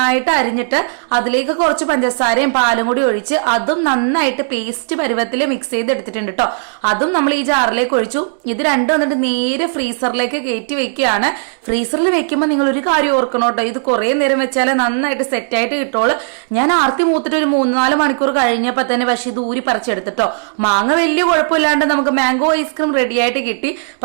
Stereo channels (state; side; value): silent; left; digital silence